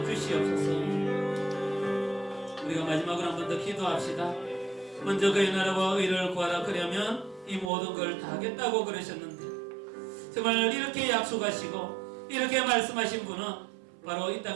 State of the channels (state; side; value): drops out; left; at 7.7 s